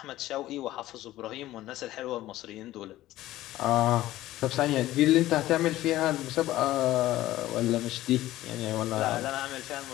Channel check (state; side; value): quieter; right; 15.4 dB